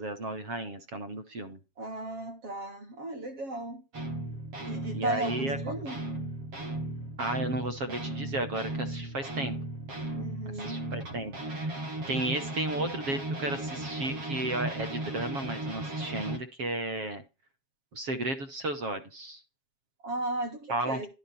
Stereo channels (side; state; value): left; late; 7.4 ms